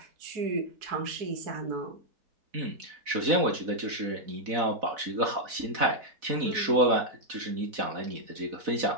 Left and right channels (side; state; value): left; late; 4.0 ms